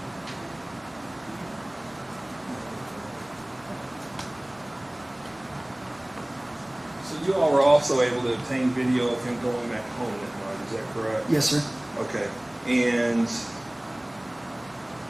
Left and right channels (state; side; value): noise; right; rumble, 28 dB below the sound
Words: So you all were also able to obtain video of him going back home that night, is that correct? Yes, sir. Okay, and